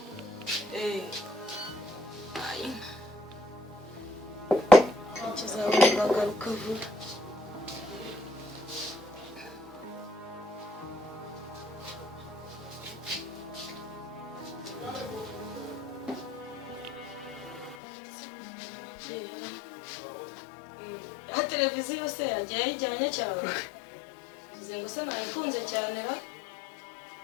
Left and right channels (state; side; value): drops out; right; at 17.8 s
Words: Bagaruka vuba. Televiziyo se yagiye ayijyanye cyane. Bize ngo se nayikunze cyane ra.